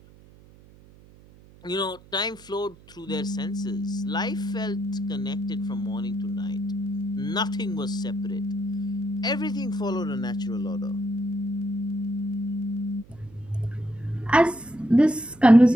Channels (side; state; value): right; noise; hum, 24 dB below the sound